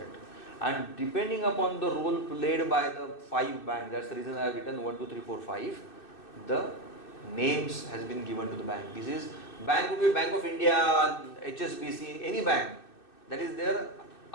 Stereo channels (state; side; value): late; right; 2.6 ms